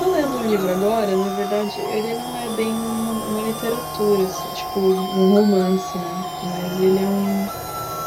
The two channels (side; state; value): both; identical; correlation 1.00